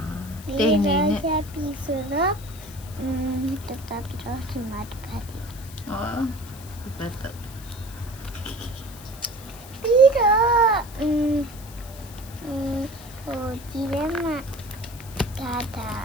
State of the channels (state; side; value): noise; left; hiss, 18 dB below the sound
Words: ဒီ 对 တော့ 呢。 ရပြီဆိုတော့တတပြီးတော့ဒီမှာတစ်ဖက်ဒီ 哦，不得。 ပြီးတော့ဟိုဒီထဲမှာဒါဟ